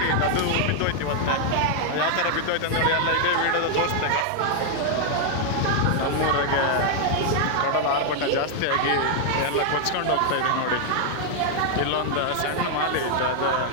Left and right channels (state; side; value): different; both; correlation 0.00